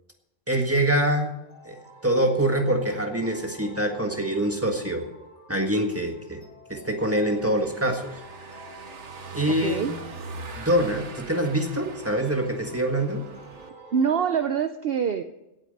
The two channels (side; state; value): both; normal; correlation -0.02